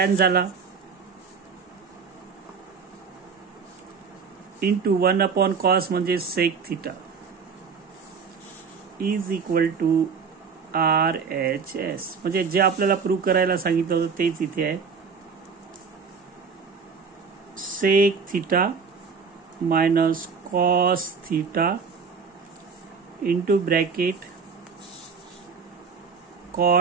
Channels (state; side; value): quieter; left; 5.6 dB